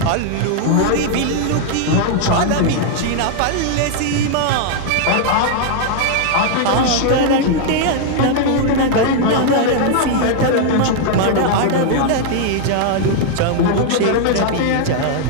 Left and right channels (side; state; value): both; different; correlation 0.00